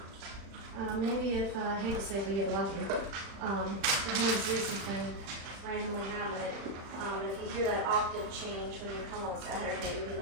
Maybe if, I hate to say if we get lucky, if him and Zeus has been randomly having it, if you hear that octave change when you come on Saturday, you'll be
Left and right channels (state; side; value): late; left; 36 ms